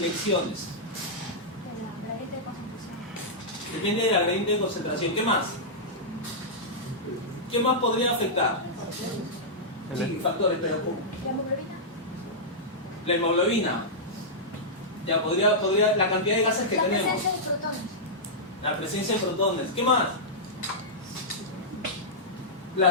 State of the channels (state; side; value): normal; both; correlation -0.11